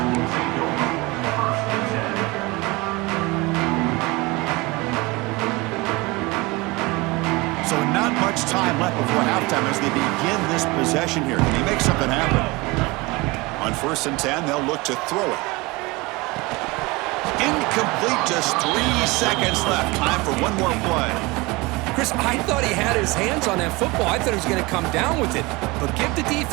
So not much time left before halftime as they begin this possession here. Can they make something happen? On 1st and 10, they'll look to throw it. Incomplete, just 3 seconds left. Time for one more play. Chris, I thought he had his hands on that football. I thought he was going to come down with it. But give the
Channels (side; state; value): left; quieter; 23.8 dB